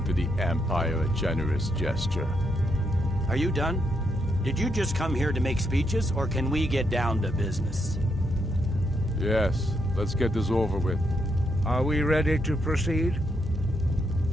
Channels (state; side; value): normal; both; correlation 0.78